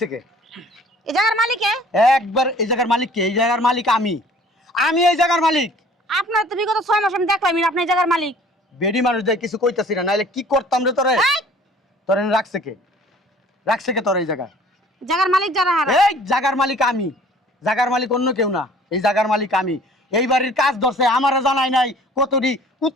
কে? এই জায়গার মালিকে? একবার এই জায়গার মালিক কে? এই জায়গার মালিক আমি, আমি এই জায়গার মালিক। আপনার তো বিগত 6 মাস আমি দেখলাম আপনি এই জায়গার মালিক। বেডি মানুষ দেয় কিছু কইতাছি না, নাইলে কি করতাম রে তোরে? এই তোরে রাখছে কে? রাখছে কে তোর এই জায়গা? জায়গার মালিক যারা হারা। এই জায়গার মালিক আমি, জায়গার মালিক অন্য কেউ না, এই জায়গার মালিক আমি। এই বাড়ির কাজ ধরছে, আমারে জানাই নাই কতটি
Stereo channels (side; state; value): both; normal; correlation 0.51